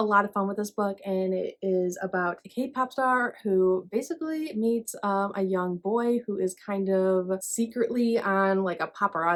lot of fun with this book, and it is about a K-pop star who basically meets a young boy who is kind of secretly on like a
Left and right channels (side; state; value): both; identical; correlation 1.00